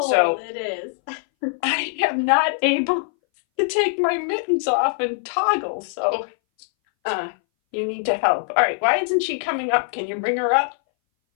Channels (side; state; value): right; silent; 61 dB below the other